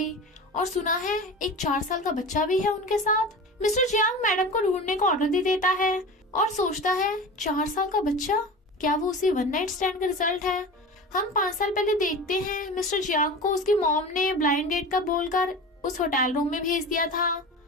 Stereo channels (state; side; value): normal; both; correlation 0.32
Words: और सुना है एक 4 साल का बच्चा भी है उनके साथ। मिस्टर जियांग मैडम को ढूंढने का ऑर्डर दे देता है और सोचता है 4 साल का बच्चा, क्या वो उसी वन नाइट स्टैंड का रिजल्ट है। हम 5 साल पहले देखते हैं मिस्टर जियांग को उसकी मॉम ने ब्लाइंड डेट का बोलकर उस होटल रूम में भेज दिया था।